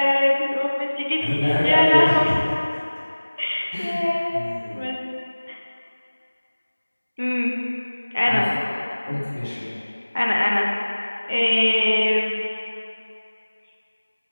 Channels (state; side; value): inverted; both; correlation -1.00